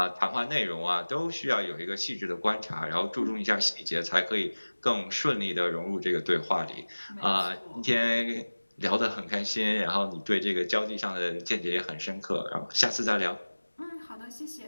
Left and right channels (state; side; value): inverted; both; correlation -1.00